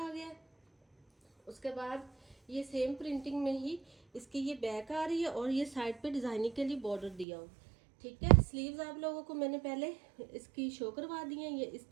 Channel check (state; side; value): drops out; left; at 7.2 s